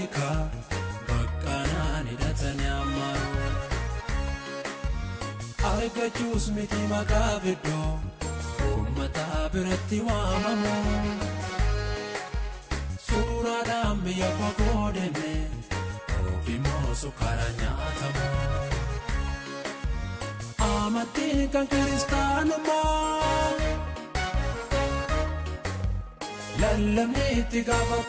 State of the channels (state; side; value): identical; both; correlation 1.00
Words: baqqaanaan hidhatanii ammaru argachuus miti maqaa fiddoo uummata biratti waamamu suuraadhaan biyya fagoo deeme ofiimoo sukkaara nyaatamu amantiin kan kiristaanummaa lallabni itti